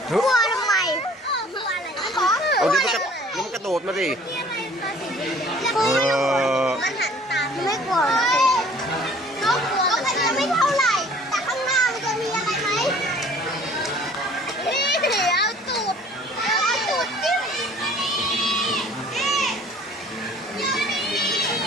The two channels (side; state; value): both; normal; correlation 0.53